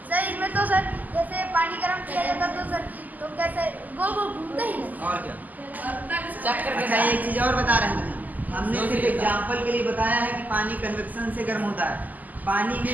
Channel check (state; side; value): late; left; 0.081 ms